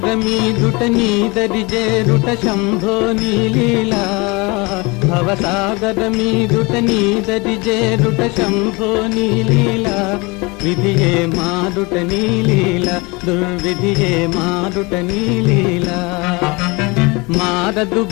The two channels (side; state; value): right; quieter; 26.3 dB